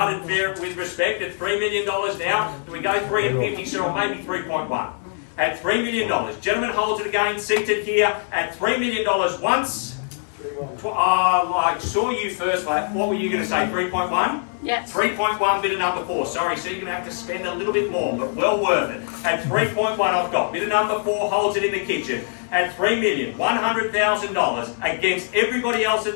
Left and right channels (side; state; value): right; silent; 64 dB below the other